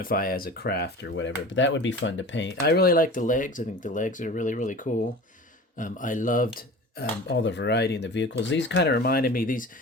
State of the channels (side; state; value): both; normal; correlation 0.37